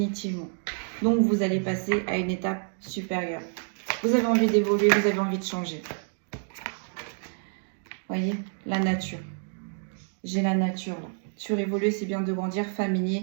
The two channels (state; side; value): silent; left; 59 dB below the other